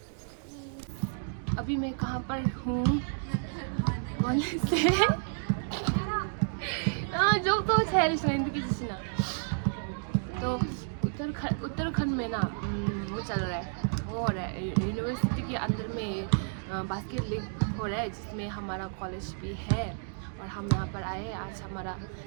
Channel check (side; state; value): left; silent; digital silence